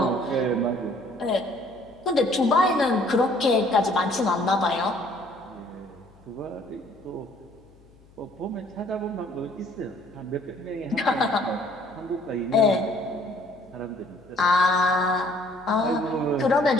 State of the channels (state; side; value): noise; left; hum, 27 dB below the sound